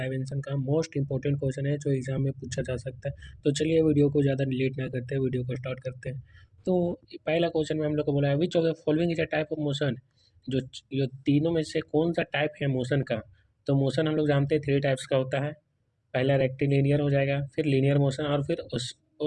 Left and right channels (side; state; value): both; identical; correlation 1.00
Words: का। मोस्ट इंपॉर्टेंट क्वेश्चन है जो एग्जाम में पूछा जा सकता है। तो चलिए वीडियो को ज़्यादा लेट ना करते हैं, वीडियो को स्टार्ट करते हैं। तो पहला क्वेश्चन में हम लोग को बोला है which of the following is a type of motion. जो जो तीनों में से कौन सा टाइप है मोशन का। तो मोशन हम लोग जानते हैं 3 टाइप्स का होता है। पहला रेक्टिलिनियर हो जाएगा, फिर लीनियर मोशन और फिर